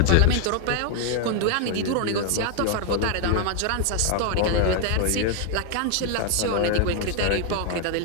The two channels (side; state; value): both; different; correlation 0.00